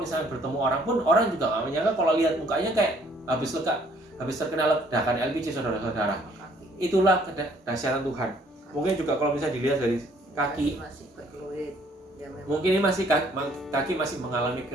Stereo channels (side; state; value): both; normal; correlation 0.62